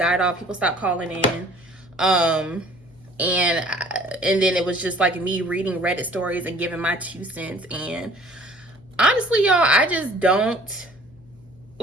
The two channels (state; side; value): noise; left; hum, 27 dB below the sound